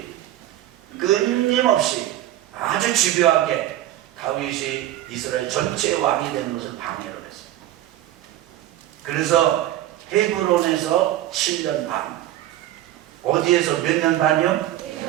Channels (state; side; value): quieter; left; 13.7 dB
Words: 끊임없이 아주 집요하게 다윗이 이스라엘 전체의 왕이 되는 것을 방해를 했습니다. 그래서 헤브론에서 7년 반, 어디에서 몇 년 반이요?